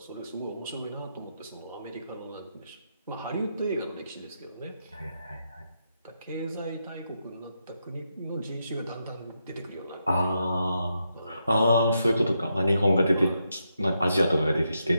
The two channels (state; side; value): inverted; both; correlation -0.83